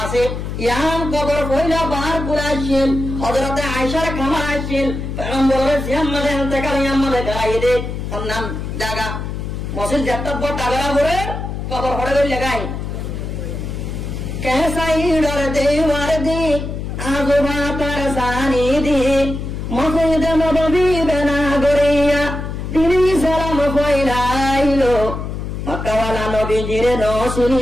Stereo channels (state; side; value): noise; left; hum, 5 dB below the sound